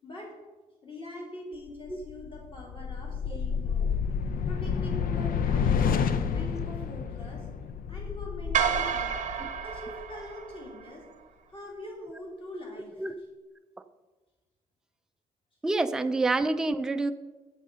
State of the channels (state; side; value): normal; both; correlation 0.50